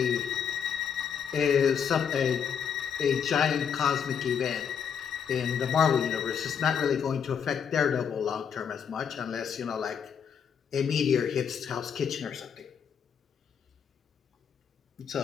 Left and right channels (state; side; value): quieter; right; 7.4 dB